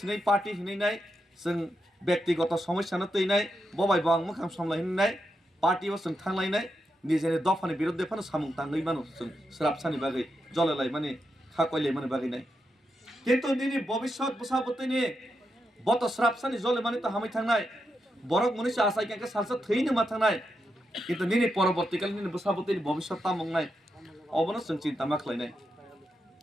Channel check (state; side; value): normal; both; correlation 0.85